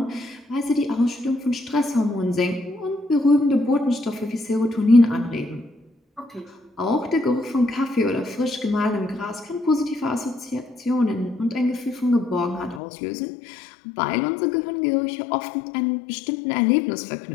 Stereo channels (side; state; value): right; drops out; at 12.8 s